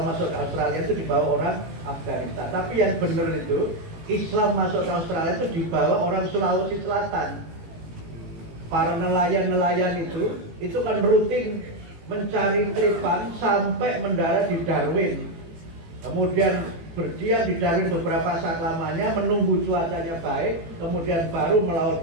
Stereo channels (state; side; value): late; left; 18 ms